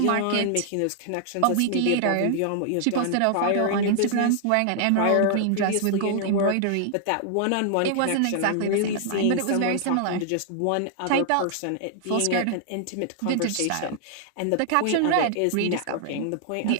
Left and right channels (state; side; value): different; both; correlation -0.01